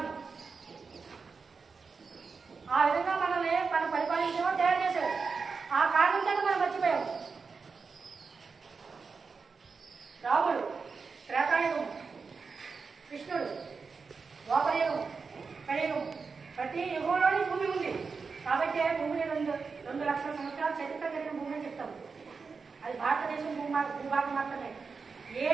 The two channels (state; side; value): quieter; left; 4.9 dB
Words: ఆ విధంగా మనల్ని మనం పరిపాలించడం తయారు చేశారు. ఆ కారణం చేత మనం మర్చిపోయాము. రాముడు త్రేతాయుగం, కృష్ణుడు ద్వాపరయుగం, కలియుగం, ప్రతి యుగంలోని భూమి ఉంది. కాబట్టి భూమిని 2 లక్షల సంవత్సరాల చరిత్ర కలిగిన భూమి అని చెప్తాము. అది భారతదేశం భూభాగం మాత్రమే. ఏ